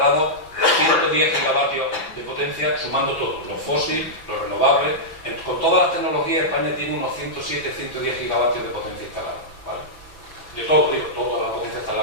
110 gigavatios de potencia, sumando todo, los fósiles, los renovables. Con todas las tecnologías, España tiene unos 107, 110 gigavatios de potencia instalada, ¿vale? De todo, digo, toda la potencia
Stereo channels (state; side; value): late; right; 6.0 ms